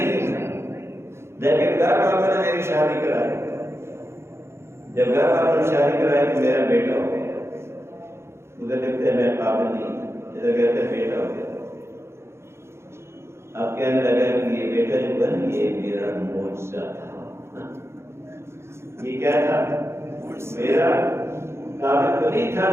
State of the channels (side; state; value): left; late; 0.13 ms